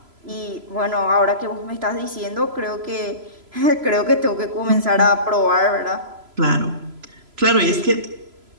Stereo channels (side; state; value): left; late; 3.0 ms